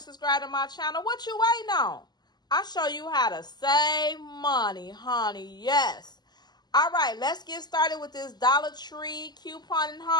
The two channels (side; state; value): right; late; 0.20 ms